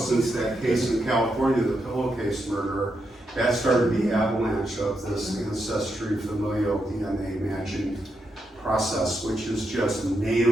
that case in California, the pillowcase murder, that started the avalanche of this ancestry familial DNA matching process, which is just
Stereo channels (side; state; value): both; normal; correlation 0.83